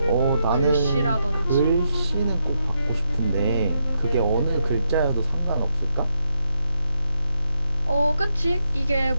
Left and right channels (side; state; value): both; inverted; correlation -0.81